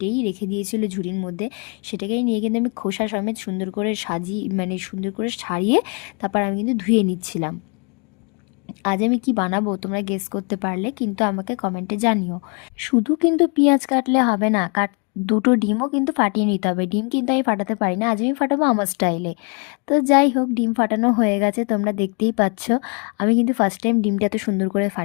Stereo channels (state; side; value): quieter; right; 35.9 dB